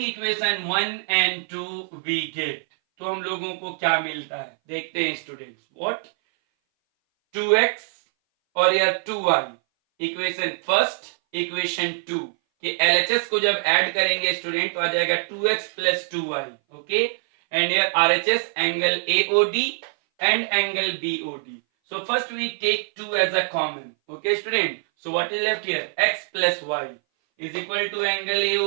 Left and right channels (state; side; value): silent; left; 59 dB below the other